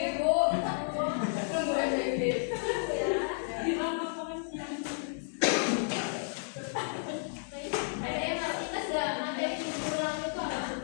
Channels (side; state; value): right; silent; digital silence